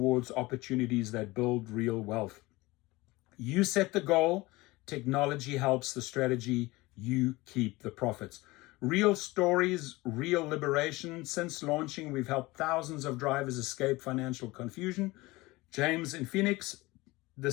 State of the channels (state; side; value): quieter; right; 21.2 dB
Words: opportunities that build real wealth. You set the goal, technology helps the strategy, you keep the profits. Real stories, real liberation. Since launching, we've helped thousands of drivers escape financial confusion. James in Phoenix